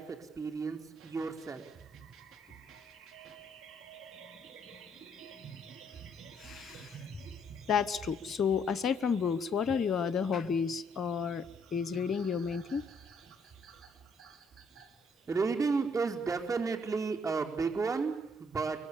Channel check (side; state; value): both; normal; correlation 0.68